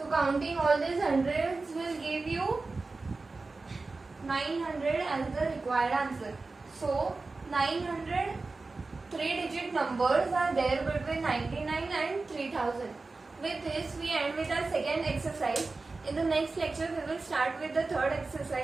counting all these hundreds will give you 900 as the required answer. So 900 3-digit numbers are there between 99 and 3000. With this we end with our second exercise. In the next lecture we will start with the third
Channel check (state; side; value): quieter; left; 3.7 dB